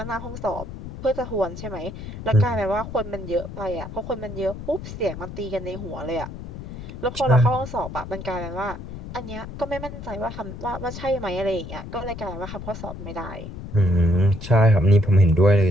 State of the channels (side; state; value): left; noise; rumble, 10 dB below the sound